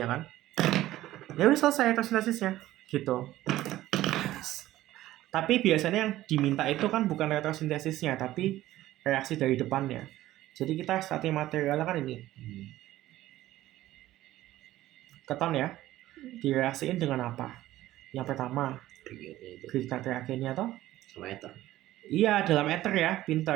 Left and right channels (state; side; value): quieter; left; 15.1 dB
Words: kan? Ya udah selesai retrosintesisnya gitu. Tapi biasanya yang diminta itu kan bukan retrosintesisnya, tapi reaksi dari depannya. Jadi kita starting materialnya kan ini. Keton ya. Direaksiin dengan apa? Yang pertama, Grignard reagennya toh? Sama ether. Iya, dalam ether ya,